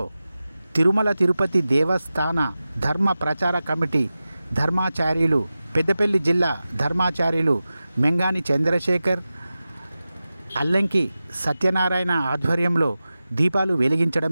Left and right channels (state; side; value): inverted; both; correlation -0.94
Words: తిరుమల తిరుపతి దేవస్థాన ధర్మ ప్రచార కమిటీ ధర్మాచార్యులు పెద్దపల్లి జిల్లా ధర్మాచార్యులు మెంగాని చంద్రశేఖర్, అల్లంకి సత్యనారాయణ ఆధ్వర్యంలో దీపాలు వెలిగించడం